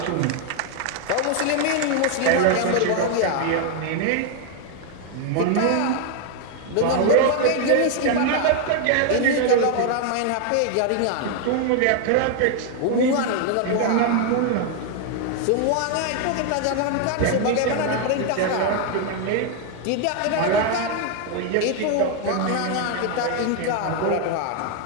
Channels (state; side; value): different; both; correlation 0.01